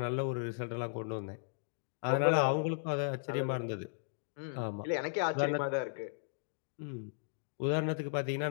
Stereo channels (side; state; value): right; silent; digital silence